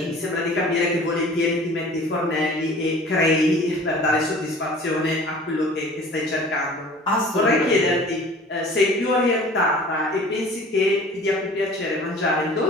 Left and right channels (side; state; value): both; normal; correlation 0.46